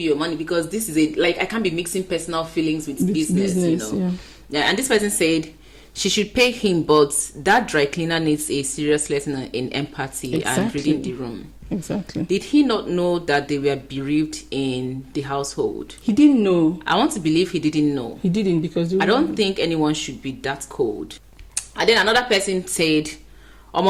your money because this is I can't be mixing personal feelings with business, Yeah, and this person said she should pay him, but that dry cleaner needs a serious lesson in empathy and reading the room. Exactly. Did he not know that they were bereaved in the household? He didn't know. I want to believe he didn't know. He didn't, because I don't think anyone should be that cold. And then another person said,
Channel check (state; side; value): identical; both; correlation 1.00